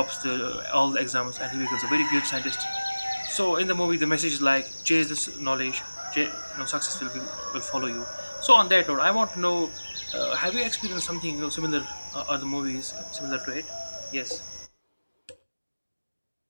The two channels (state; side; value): inverted; both; correlation -1.00